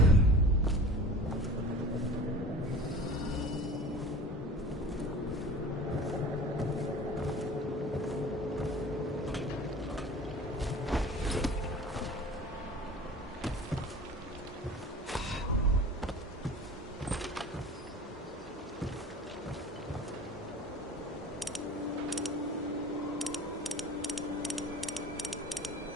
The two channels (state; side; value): normal; both; correlation 0.40